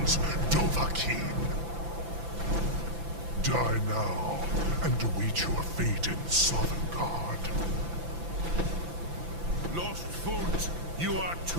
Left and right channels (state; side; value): late; left; 5.9 ms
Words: Dovahkiin. Die now, and await your fate in Sovngarde. Lost Foot, you are